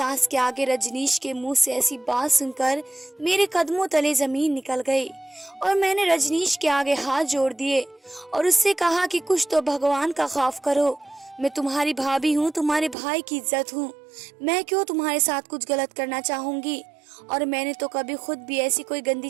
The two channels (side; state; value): left; drops out; at 13.0 s